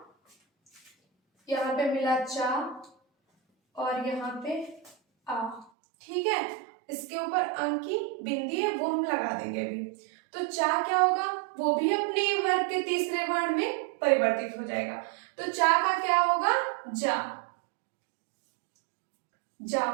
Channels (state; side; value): drops out; left; at 5.7 s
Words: यहाँ पे मिला चा और यहाँ पे आ, ठीक है। इसके ऊपर अंक की बिंदी है, वो हम लगा देंगे अभी। तो चा क्या होगा, वो भी अपने वर्ग के तीसरे वर्ण में परिवर्तित हो जाएगा। तो चा का क्या होगा, जा